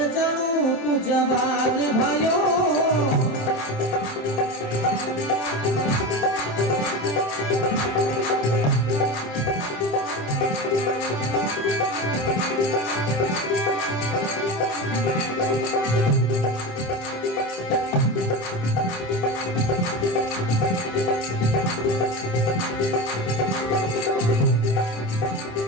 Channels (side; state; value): right; late; 27 ms